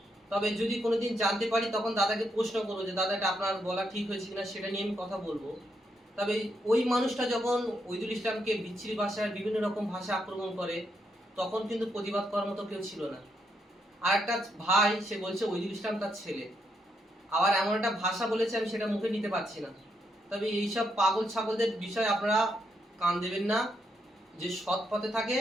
তবে যদি কোনোদিন জানতে পারি তখন দাদাকে প্রশ্ন করবো যে দাদা এটা আপনার বলা ঠিক হয়েছে কিনা, সেটা নিয়ে আমি কথা বলবো। তবে ওই মানুষটা যখন ওইদুল ইসলামকে বিচ্ছিরি ভাষায় বিভিন্ন রকম ভাষা আক্রমণ করে, তখন কিন্তু প্রতিবাদ করার মতো কেউ ছিল না। আর একটা ভাই সে বলছে ওইদুল ইসলাম তার ছেলে, আবার এমন একটা ভাষা বলেছে আমি সেটা মুখে নিতে পারছি না। তবে এইসব পাগল ছাগলদের বিষয়ে আপনারা কান দেবেন না। যে সৎ পথে থাকে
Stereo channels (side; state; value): both; normal; correlation 0.79